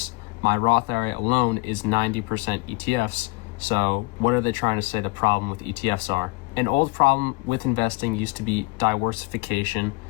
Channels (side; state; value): right; quieter; 25.2 dB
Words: My Roth IRA alone is 90% ETFs. So what are they trying to say the problem with ETFs are? An old problem with investing used to be diversification,